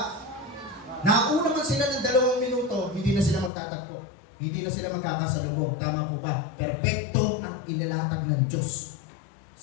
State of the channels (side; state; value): right; drops out; at 3.5 s